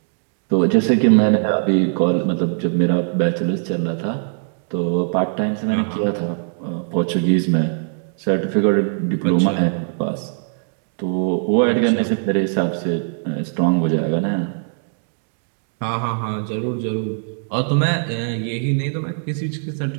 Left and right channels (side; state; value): left; silent; digital silence